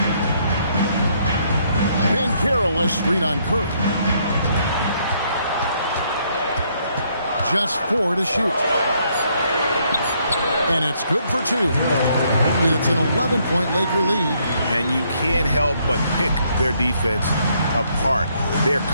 Banchero a screen on Curry. Just 4 to shoot. And it's good for 2. And it's an 11-point Laker lead. And you can't help but pick their defense apart. They're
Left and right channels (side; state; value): both; inverted; correlation -0.70